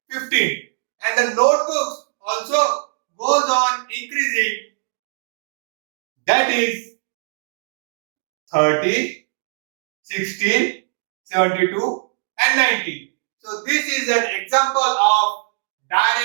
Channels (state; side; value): silent; left; digital silence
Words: 15. And the notebooks also goes on increasing. That is 30, 16, 72 and 90. So this is an example of